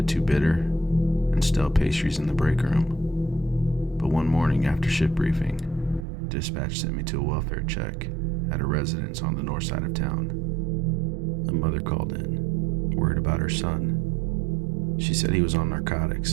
too bitter, and stale pastries in the break room. But one morning after shift briefing, dispatch sent me to a welfare check at a residence on the north side of town. A mother called in, worried about her son. She said he was on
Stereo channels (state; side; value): drops out; left; at 6.1 s